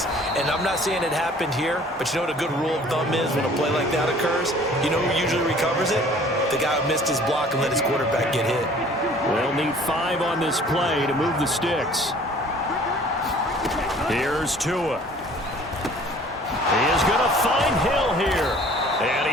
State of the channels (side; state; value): both; normal; correlation 0.52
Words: And I'm not saying it happened here, but you know what a good rule of thumb is when a play like that occurs? You know who usually recovers it? The guy who missed his block and let his quarterback get hit. They'll need 5 on this play to move the sticks. Here's Tua. He is going to find Hill here. And